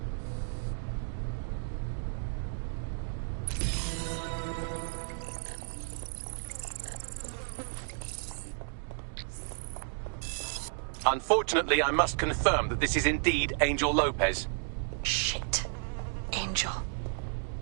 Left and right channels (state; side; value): silent; left; digital silence